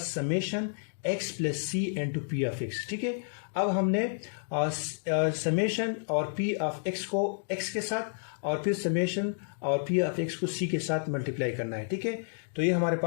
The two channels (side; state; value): right; silent; digital silence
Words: x plus c into p of x, ठीक है। अब हमने समेशन और p ऑफ x को x के साथ और फिर समेशन और p ऑफ x को c के साथ मल्टीप्लाई करना है, ठीक है। तो ये हमारे